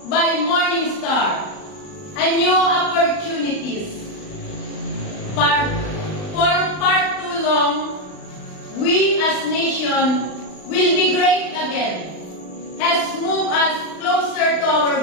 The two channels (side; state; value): right; late; 39 ms